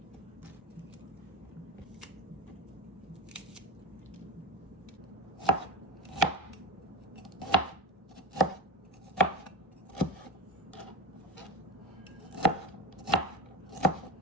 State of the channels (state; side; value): normal; both; correlation 0.24